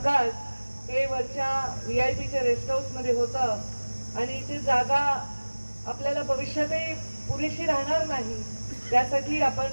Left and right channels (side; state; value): both; inverted; correlation -1.00